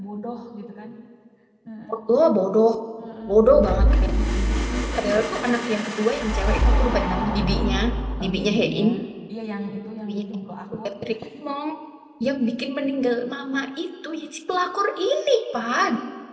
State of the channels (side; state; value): both; identical; correlation 1.00